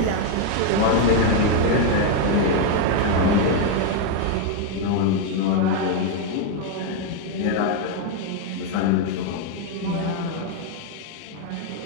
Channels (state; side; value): different; both; correlation 0.01